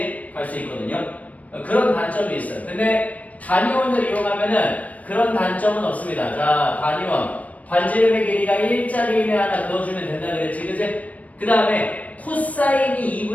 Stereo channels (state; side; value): late; right; 0.069 ms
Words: 갈 수 있거든요. 그런 단점이 있어요. 근데 단위원을 이용하면은 그런 단점은 없습니다. 자, 단위원. 반지름의 길이가 1짜리 이내 하나 그어주면 된다 그랬지, 그지? 그 다음에 코사인이